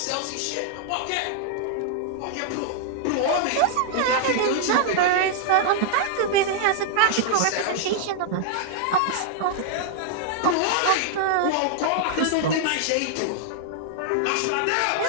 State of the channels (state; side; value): different; both; correlation -0.01